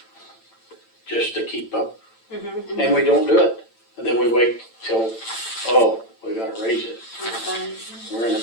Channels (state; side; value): late; right; 8.9 ms